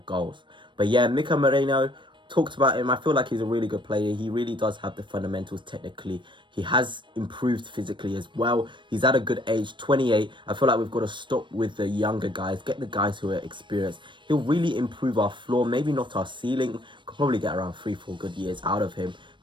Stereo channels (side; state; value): left; late; 0.23 ms